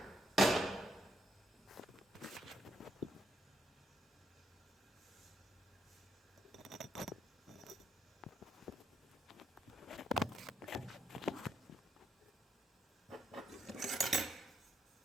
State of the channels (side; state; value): both; normal; correlation 0.76